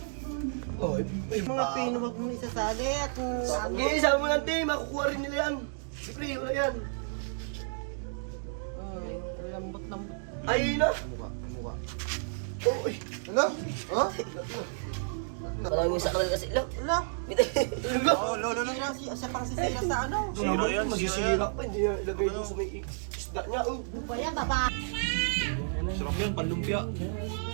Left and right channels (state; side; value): silent; left; digital silence